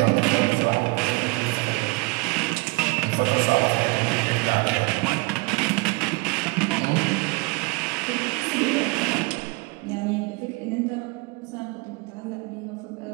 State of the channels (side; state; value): left; quieter; 27.6 dB